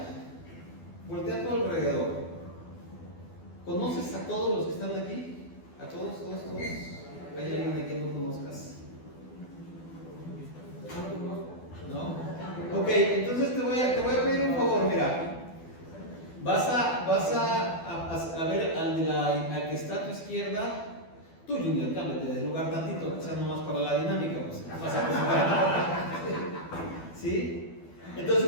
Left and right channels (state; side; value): late; right; 12 ms